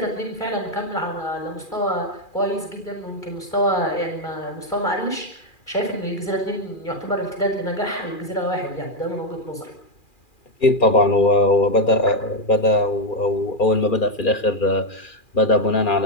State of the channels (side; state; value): right; late; 2.4 ms